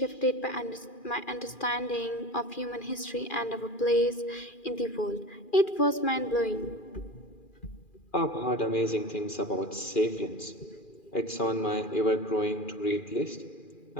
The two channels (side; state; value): right; late; 2.4 ms